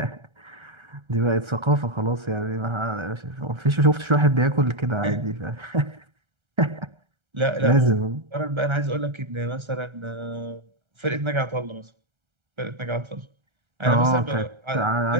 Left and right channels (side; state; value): left; late; 1.3 ms